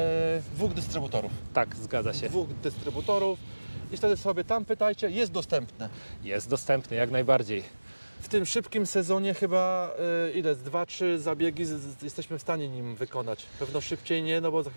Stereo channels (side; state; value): both; inverted; correlation -1.00